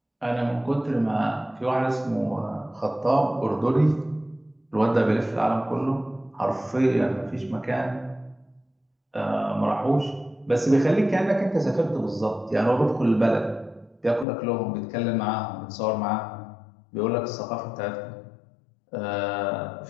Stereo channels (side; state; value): right; drops out; at 14.2 s